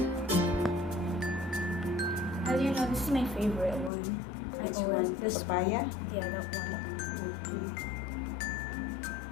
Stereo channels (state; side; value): drops out; right; at 3.9 s